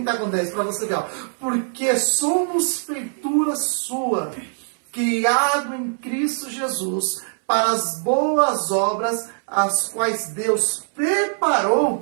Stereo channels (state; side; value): silent; left; 64 dB below the other